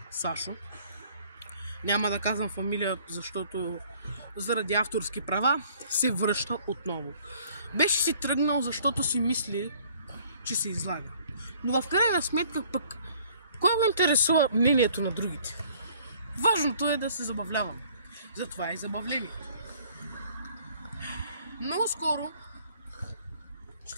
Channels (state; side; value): inverted; both; correlation -0.58